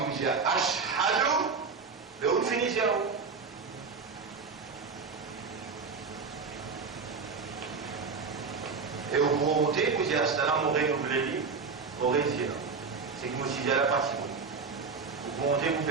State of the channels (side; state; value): left; quieter; 5.0 dB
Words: vous dise ashhadu, mais où finissez vous? Et vous montez, vous dites astana, mon règle, vous l'avez dit, vous aurez dit là. C'est que moi aussi j'ai la partie. Vous montez, vous